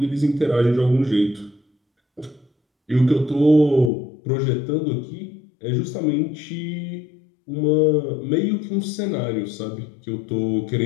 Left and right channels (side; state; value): right; drops out; at 3.9 s